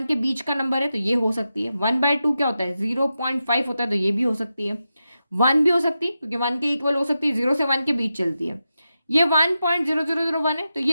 के बीच का नंबर है, तो ये हो सकती है। 1/2 क्या होता है, 0.5 होता है, तो ये भी हो सकती है। 1 भी हो सकती है क्योंकि 1 के इक्वल हो सकती है, 0 से 1 के बीच चलती है। ये 1.0001 है, तो ये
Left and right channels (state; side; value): inverted; both; correlation -0.90